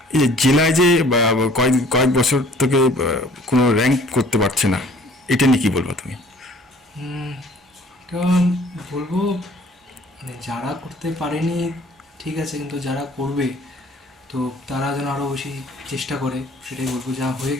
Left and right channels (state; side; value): normal; both; correlation 0.54